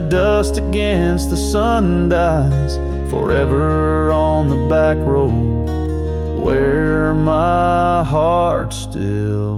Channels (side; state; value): both; identical; correlation 1.00